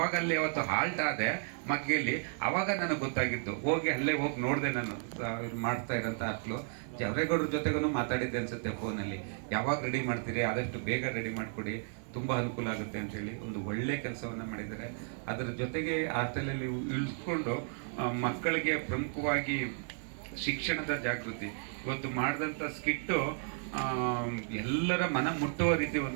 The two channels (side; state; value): left; silent; 55 dB below the other